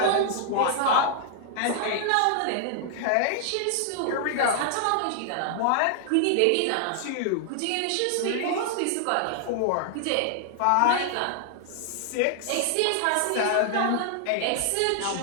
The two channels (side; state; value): both; different; correlation -0.01